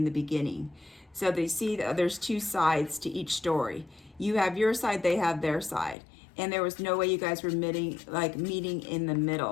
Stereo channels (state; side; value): drops out; right; at 6.0 s